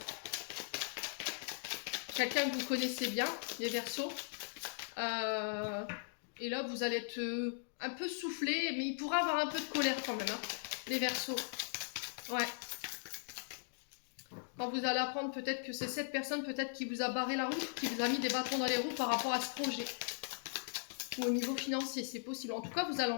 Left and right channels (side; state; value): right; silent; digital silence